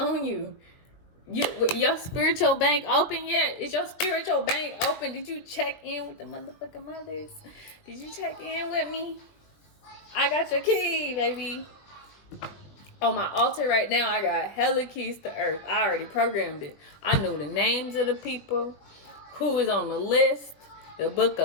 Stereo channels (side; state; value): right; late; 20 ms